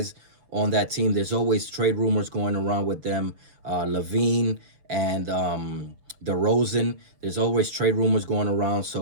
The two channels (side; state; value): left; late; 6.3 ms